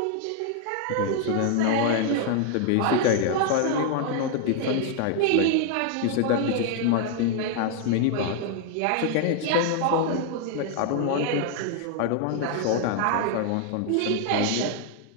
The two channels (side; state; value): both; different; correlation 0.00